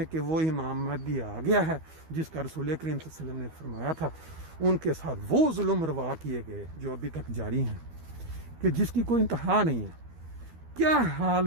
کہ وہ امام مہدی آ گیا ہے جس کا رسول کریم صلی اللہ علیہ وسلم نے فرمایا تھا، ان کے ساتھ وہ ظلم روا کیے گئے جو ابھی تک جاری ہیں، کہ جس کی کوئی انتہا نہیں ہے۔ کیا حال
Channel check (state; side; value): late; left; 12 ms